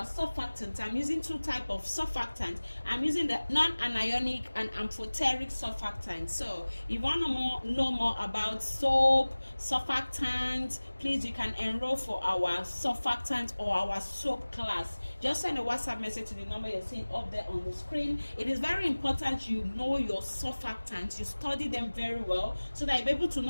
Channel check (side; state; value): both; inverted; correlation -1.00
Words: surfactant. I'm using two types of surfactant. I'm using the non-anionic and amphoteric surfactant. So if you want to know more about soap surfactant, please, you can enroll for our surfactant or our soap class. Just send a WhatsApp message to the number you're seeing up there on the screen. It is very important you know your surfactants, you study them very well, so that you're able to